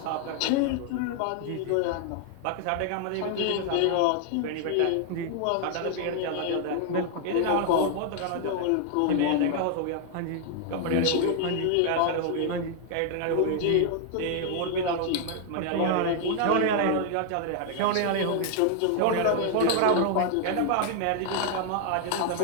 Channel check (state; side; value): different; both; correlation 0.00